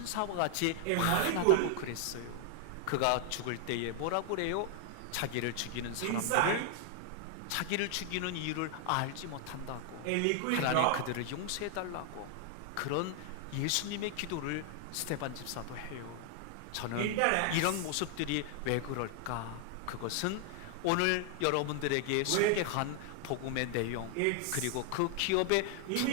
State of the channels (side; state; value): both; different; correlation 0.00